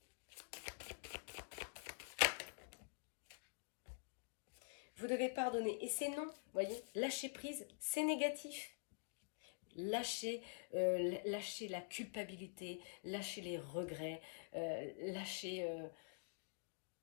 Vous devez pardonner. Et c'est non. Vous voyez, lâcher prise, c'est négatif. Lâcher la culpabilité, lâcher les regrets, lâcher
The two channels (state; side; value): silent; right; digital silence